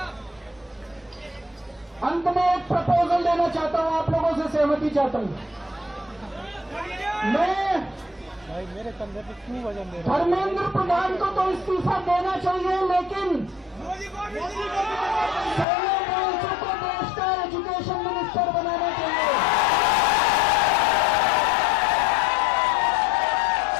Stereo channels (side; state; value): right; drops out; at 15.7 s